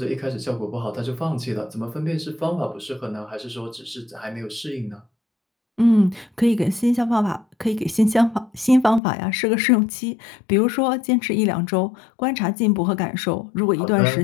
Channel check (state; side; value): drops out; right; at 9.0 s